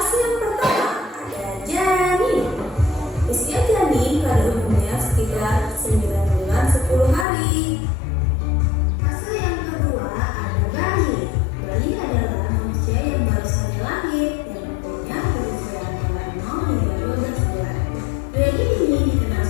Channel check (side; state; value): right; drops out; at 7.2 s